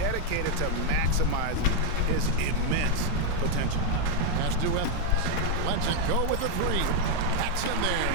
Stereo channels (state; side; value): different; both; correlation 0.01